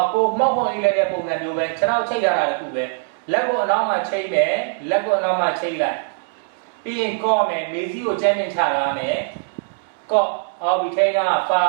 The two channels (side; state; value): left; silent; 65 dB below the other